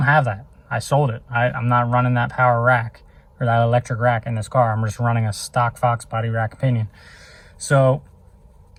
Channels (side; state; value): both; identical; correlation 1.00